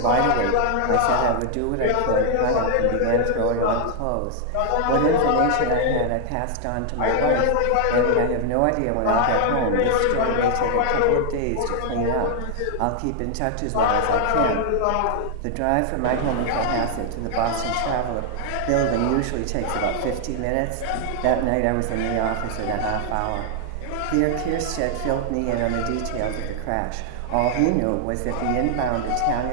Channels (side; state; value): both; different; correlation 0.00